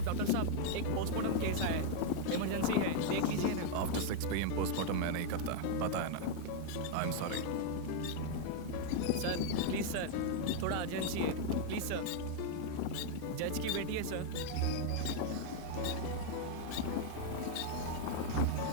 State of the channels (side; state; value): both; different; correlation 0.00